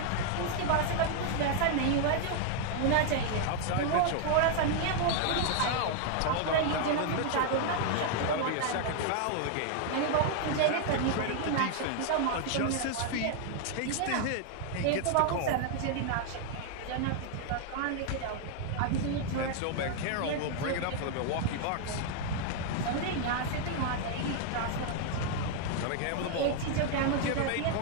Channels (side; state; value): both; different; correlation 0.00